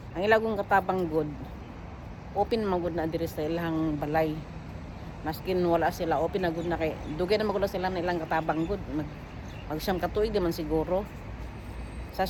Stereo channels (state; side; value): identical; both; correlation 1.00